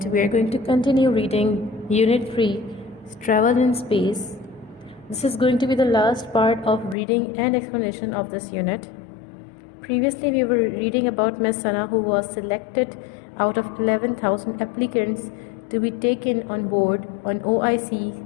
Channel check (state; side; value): drops out; right; at 7.0 s